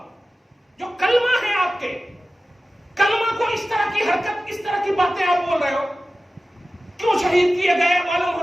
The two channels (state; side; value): normal; both; correlation 0.95